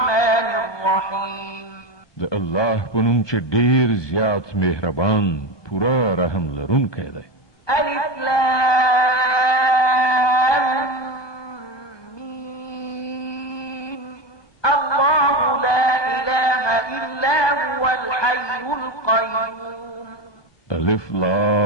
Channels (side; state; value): right; late; 1.2 ms